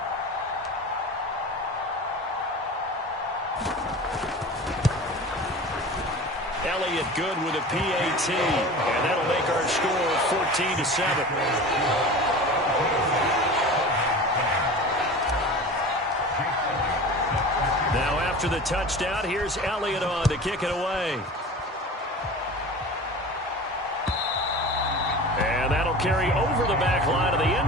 Elliott good with a PAT, and that'll make our score 14-7. Now after the touchdown, here's Elliott on to kick it away. And that'll carry over the back line of the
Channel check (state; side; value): normal; both; correlation 0.35